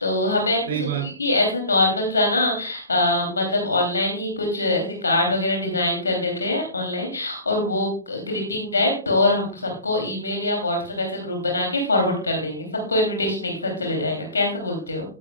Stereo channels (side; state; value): both; inverted; correlation -0.42